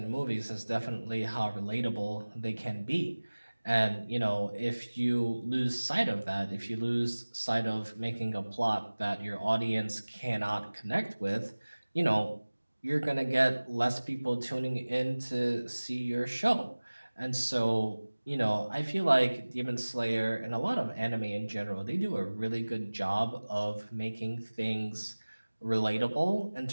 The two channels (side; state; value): both; inverted; correlation -1.00